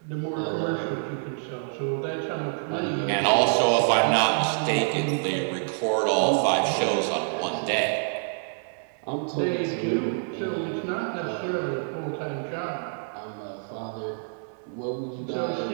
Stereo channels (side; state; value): left; silent; digital silence